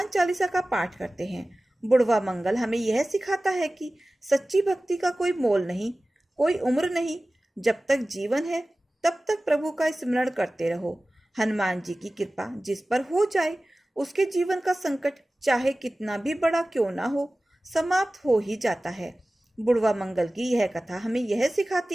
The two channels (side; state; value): both; normal; correlation 0.97